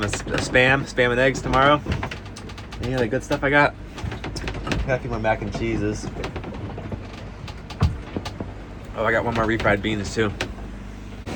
of spam and eggs tomorrow. Any other good stuff I got? Got a few more mac and cheeses. Oh, I got one more refried beans too.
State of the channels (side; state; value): both; identical; correlation 1.00